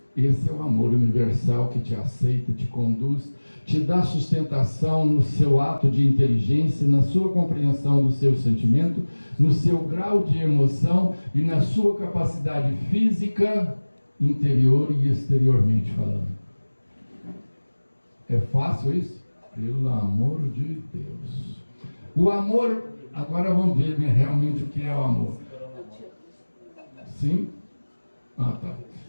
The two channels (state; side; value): inverted; both; correlation -1.00